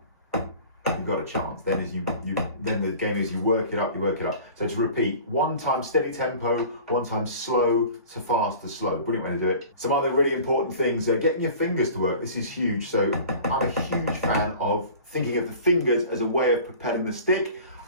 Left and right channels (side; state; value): both; inverted; correlation -0.43